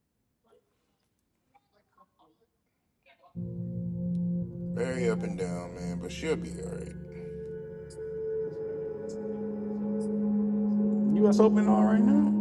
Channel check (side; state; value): both; identical; correlation 1.00